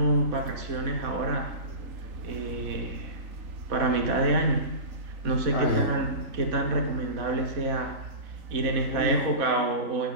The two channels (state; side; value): late; left; 3.4 ms